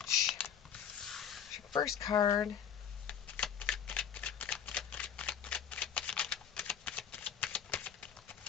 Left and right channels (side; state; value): right; quieter; 8.5 dB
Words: Here's your first card.